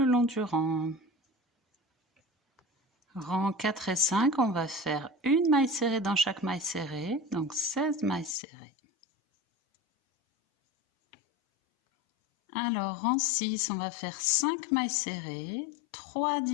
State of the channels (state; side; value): drops out; right; at 8.3 s